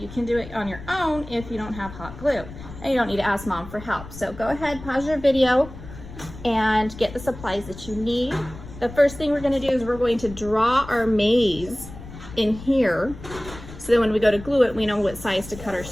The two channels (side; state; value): left; noise; rumble, 14 dB below the sound